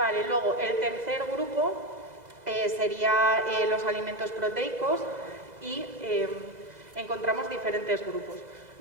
luego el tercer grupo sería los alimentos proteicos y encontramos diferentes grupos.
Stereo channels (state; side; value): late; left; 2.0 ms